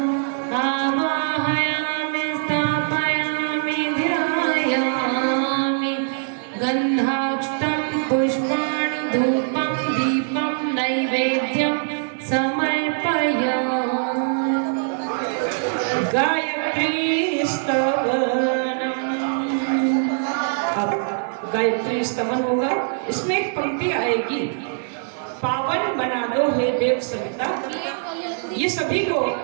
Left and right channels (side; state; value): left; silent; digital silence